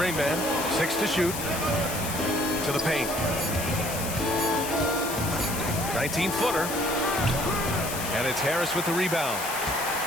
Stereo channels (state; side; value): noise; left; hiss, 6 dB below the sound